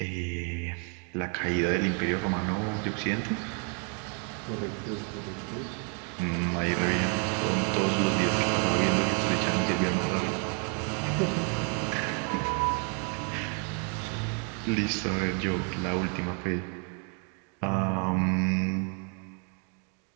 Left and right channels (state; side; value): quieter; left; 39.2 dB